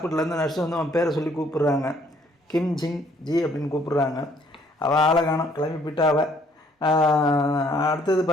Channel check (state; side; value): normal; both; correlation 0.63